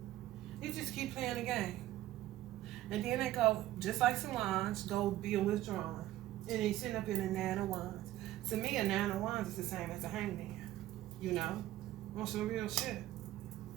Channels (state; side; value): quieter; left; 14.8 dB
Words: He just keep playing the game. And then they go, just like Solange, go be a withdrawn. And they sitting up in a Nine of Wands. To me, a Nine of Wands is the same as a hangman. You know? On some real shit.